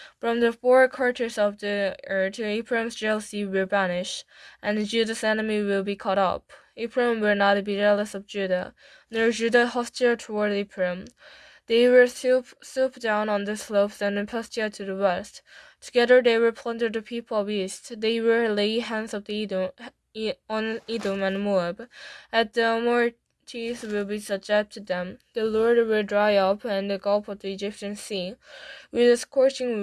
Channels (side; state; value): both; identical; correlation 1.00